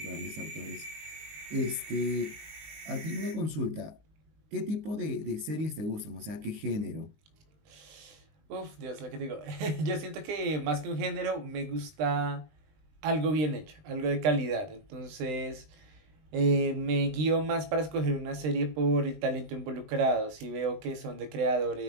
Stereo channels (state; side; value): late; left; 19 ms